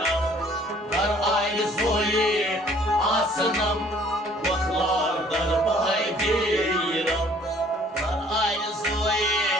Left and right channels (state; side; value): normal; both; correlation 0.57